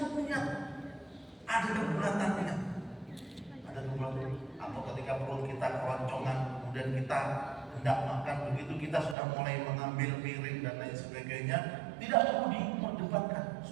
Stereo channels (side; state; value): left; drops out; at 9.2 s